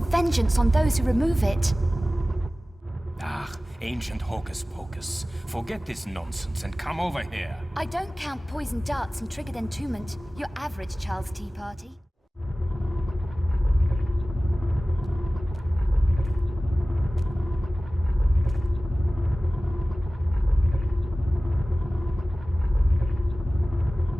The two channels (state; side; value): normal; both; correlation 0.97